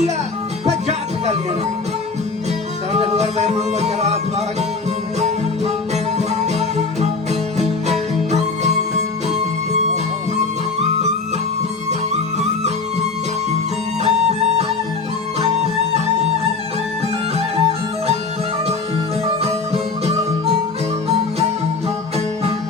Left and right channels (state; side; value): quieter; right; 4.1 dB